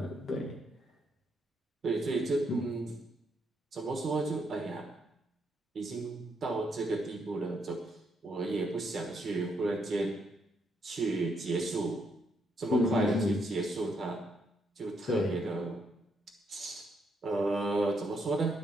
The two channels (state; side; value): normal; both; correlation 0.76